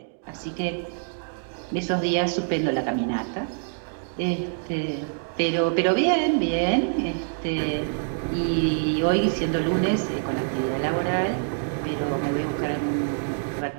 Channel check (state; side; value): silent; left; digital silence